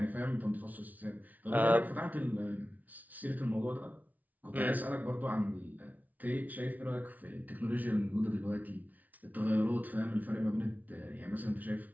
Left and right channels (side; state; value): left; late; 0.076 ms